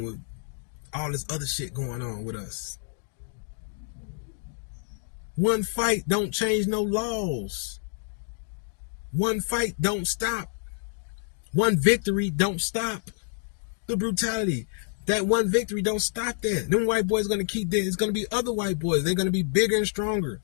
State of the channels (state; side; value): silent; right; 55 dB below the other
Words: with all this other shit going on with us. One fight don't change no laws. One fight don't stop. One victory don't stop the brutality. That one victory don't stop that. Them white boys gonna keep there. It's gonna be other white boys. They're gonna be bigger and stronger.